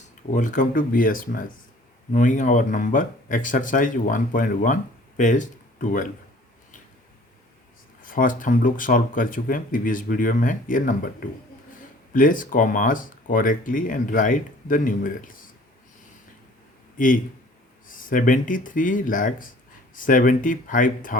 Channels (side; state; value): both; normal; correlation 0.52